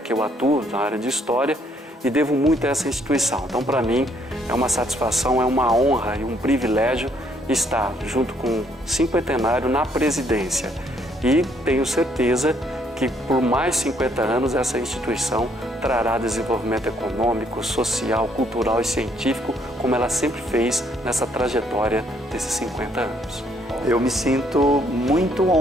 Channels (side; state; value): both; normal; correlation 0.68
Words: que eu atuo, na área de História, e devo muito a essa instituição. Então, para mim, é uma satisfação, é uma honra e um privilégio estar junto com o cinquentenário na presidência. E tenho certeza que por mais 50 anos essa instituição trará desenvolvimento econômico, social, cultural e científico, como ela sempre fez nessa trajetória desses 50 anos. Eu me sinto muito